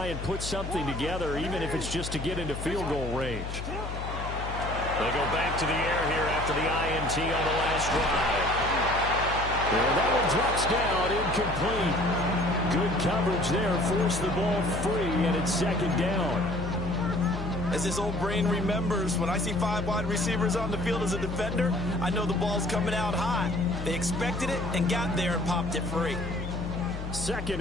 and put something together, even if it's just to get into field goal range. They go back to the air here after the INT on the last drive. And that one drops down, incomplete. Good coverage there, forced the ball free, and it's second down. As his old brain remembers, when I see 5 wide receivers on the field as a defender, I know the ball's coming out high. They expected it and got there and popped it free.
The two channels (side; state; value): left; noise; hum, 7 dB below the sound